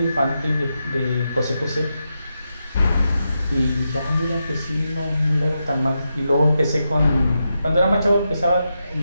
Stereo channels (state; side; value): inverted; both; correlation -0.87